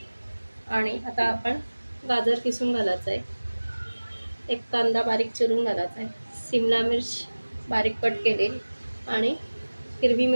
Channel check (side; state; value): both; inverted; correlation -1.00